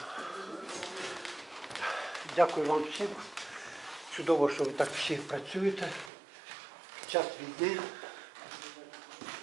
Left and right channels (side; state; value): left; drops out; at 6.1 s